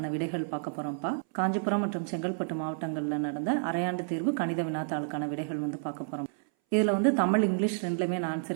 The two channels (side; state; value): left; silent; 58 dB below the other